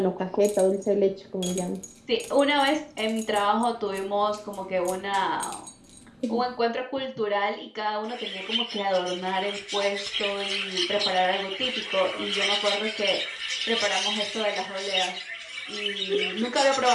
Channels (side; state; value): both; identical; correlation 1.00